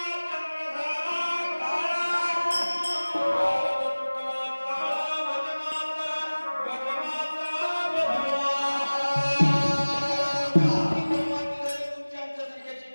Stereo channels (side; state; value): both; inverted; correlation -1.00